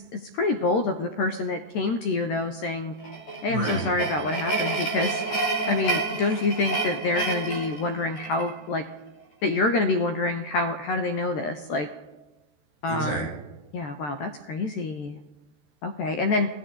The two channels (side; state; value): right; late; 14 ms